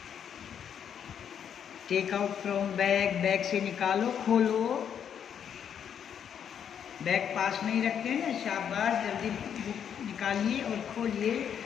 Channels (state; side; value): quieter; right; 8.4 dB